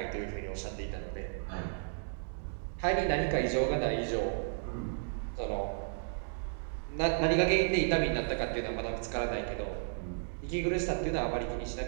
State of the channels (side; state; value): left; silent; digital silence